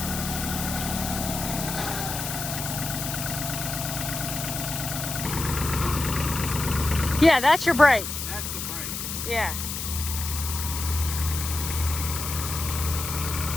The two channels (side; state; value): left; noise; hiss, 5 dB below the sound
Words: Yeah, that's your brake. That's the brake. Yeah.